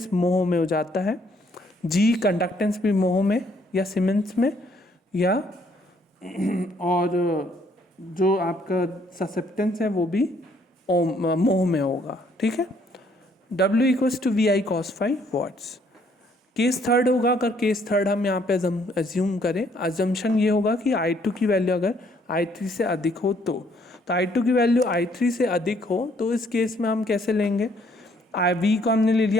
मोह में हो जाता है, G conductance भी मोह में या सीमेंस में, या और जो आपका ससेप्टेंस है वो भी मोह में होगा, ठीक है। W equals to VI cos phi watts. Case third होगा, अगर केस थर्ड हम यहाँ पे एज्यूम करें, अजम्पशन ये होगा कि I2 की वैल्यू अगर I3 से अधिक हो तो I2 की वैल्यू I3 से अधिक हो तो इस केस में हम कैसे लेंगे, V को हमने ले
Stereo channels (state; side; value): normal; both; correlation 0.66